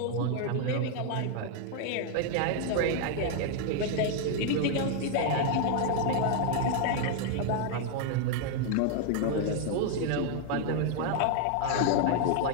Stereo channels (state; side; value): different; both; correlation 0.00